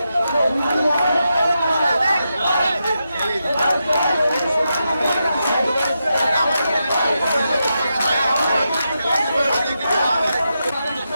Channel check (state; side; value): inverted; both; correlation -0.87